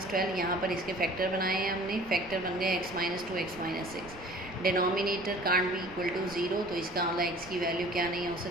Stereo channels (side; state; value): right; noise; rumble, 19 dB below the sound